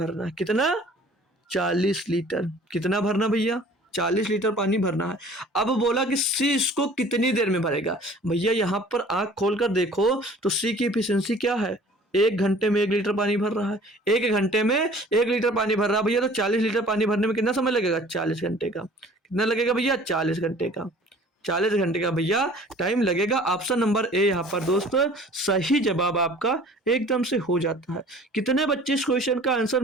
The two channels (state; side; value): normal; both; correlation 0.49